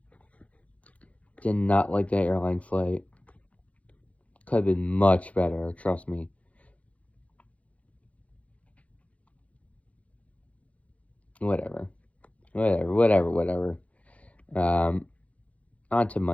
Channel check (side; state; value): right; late; 0.065 ms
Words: did not like that airline flight. Could have been much better, trust me. Whatever. On to